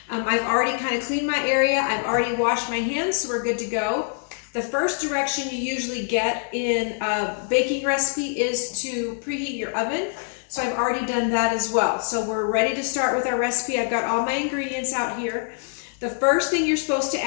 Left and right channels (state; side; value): silent; right; 62 dB below the other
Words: I've already kind of cleaned my area. I've already washed my hands, so we're good to go. The first direction you usually get in a baking recipe is to preheat your oven. So I've already done that as well. So we're ready to start with our recipe. I've got all my ingredients out here. The first thing you're supposed to